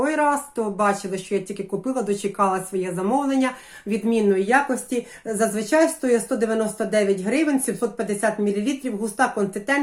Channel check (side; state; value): both; identical; correlation 1.00